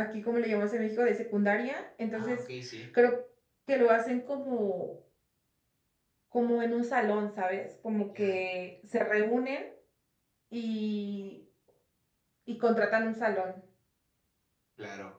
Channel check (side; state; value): both; identical; correlation 1.00